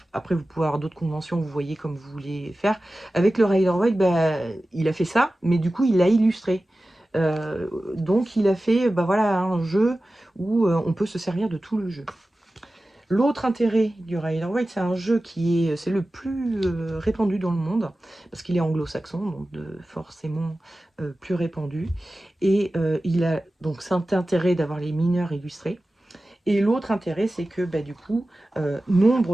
Après, vous pouvez avoir d'autres conventions, vous voyez comme vous voulez faire. Avec le Rider-Waite, il a fait ça, mais du coup, il l'a illustré. Donc, il a fait voilà, un jeu où on peut se servir de tout le jeu. L'autre intérêt du Rider-Waite, c'est un jeu c'est le plus répandu dans le monde, parce qu'il est anglo-saxon, donc forcément plus répandu. Et il a donc cet intérêt d'avoir les mineurs illustrés. Et l'autre intérêt, c'est que du coup,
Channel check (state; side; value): normal; both; correlation 0.95